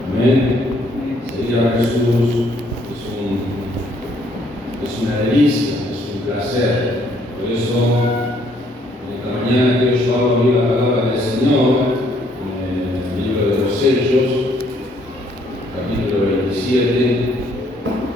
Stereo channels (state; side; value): normal; both; correlation 0.66